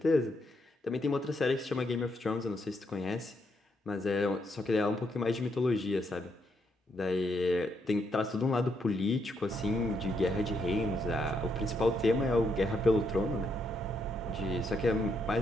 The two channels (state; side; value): normal; both; correlation 0.77